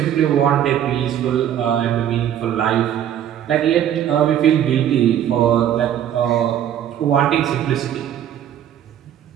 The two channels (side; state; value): left; quieter; 10.4 dB